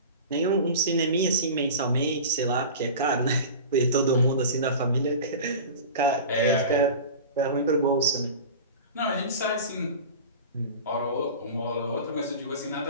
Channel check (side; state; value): both; inverted; correlation -0.34